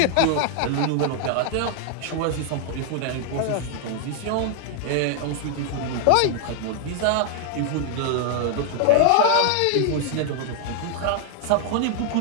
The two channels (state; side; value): different; both; correlation 0.00